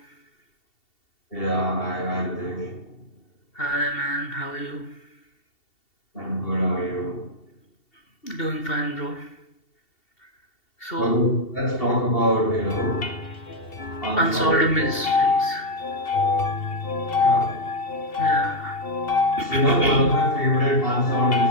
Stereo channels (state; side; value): late; right; 2.7 ms